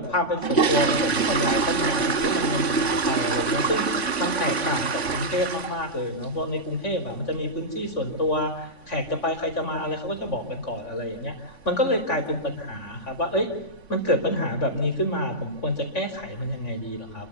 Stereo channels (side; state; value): right; late; 3.5 ms